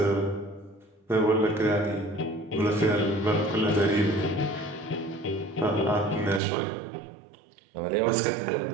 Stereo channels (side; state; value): left; drops out; at 6.4 s